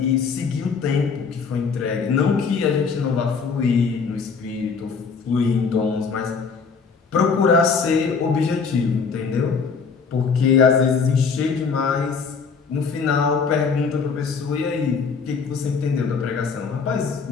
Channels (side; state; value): right; quieter; 5.4 dB